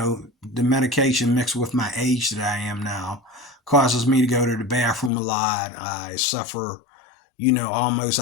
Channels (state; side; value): drops out; right; at 5.1 s